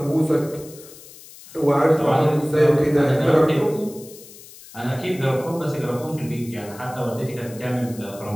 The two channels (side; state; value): left; noise; hiss, 19 dB below the sound